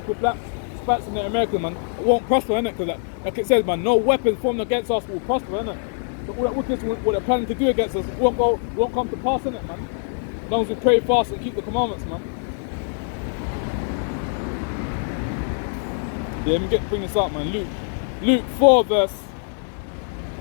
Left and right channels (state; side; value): silent; right; 61 dB below the other